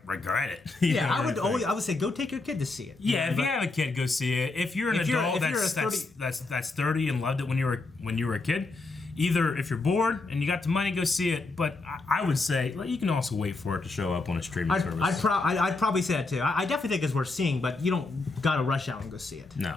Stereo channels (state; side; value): quieter; right; 3.5 dB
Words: regret it. Yeah, I would say go take your kid to see it. Yeah, if you have a kid, go see it. If you're an adult that's 30 and loved it when you were a kid. Either if you're bored and you got the money, go see it. But I would say you can also wait for it to show up on a streaming service. I'd probably say that too. I definitely think it's worth seeing, but you don't gotta rush out and go see it. No.